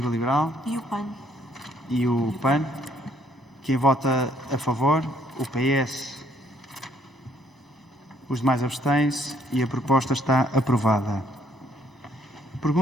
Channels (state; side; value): normal; both; correlation 0.66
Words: Liberal? E o PAN? E o PAN. Quem vota a favor? O PS. Os demais abstêm-se e a proposta está aprovada.